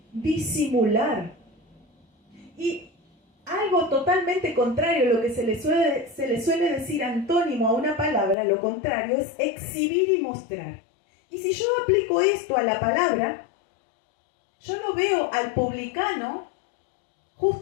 disimular. Y algo totalmente contrario a lo que se le suele decir antónimo a una palabra, lo contrario es exhibir y mostrar. Y si yo aplico esto a la palabra, yo no veo al publicano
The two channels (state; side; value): drops out; right; at 8.3 s